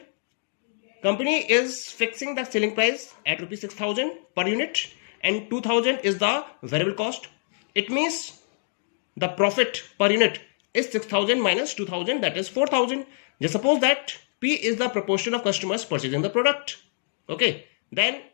company is fixing the selling price at rupees 6,000 per unit and 2,000 is the variable cost. It means the profit per unit is 6,000 minus 2,000, that is 4,000. Just suppose that P is the proportion of customers purchasing the product. Okay, then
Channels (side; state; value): right; silent; 58 dB below the other